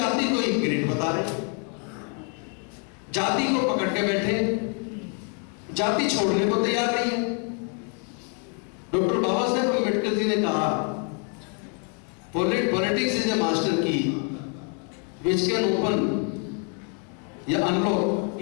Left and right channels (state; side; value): quieter; right; 39.9 dB